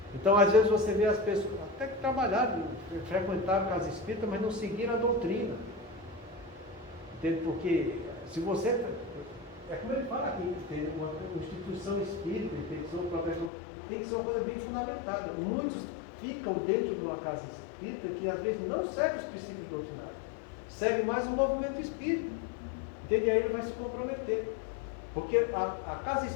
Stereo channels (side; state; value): right; drops out; at 13.5 s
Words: Então, às vezes você vê as pessoas até que trabalharam, frequentaram a casa espírita, mas não seguiram a doutrina. Entende? Porque se você... É como ele fala aqui, tem uma instituição espírita, tem que ser uma proteção, tem que ser uma coisa bem fundamentada. Muitos ficam dentro de uma casa espírita que às vezes não segue os princípios doutrinários. Segue mais o movimento espírita. Entende? E aí ele vai se comprometer. Porque a casa